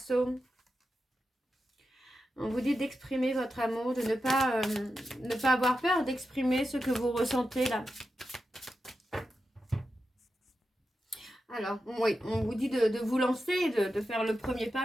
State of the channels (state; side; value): normal; both; correlation 0.90